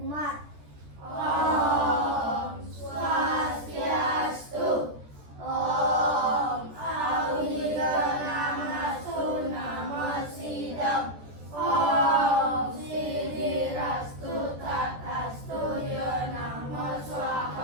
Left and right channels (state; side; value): late; left; 14 ms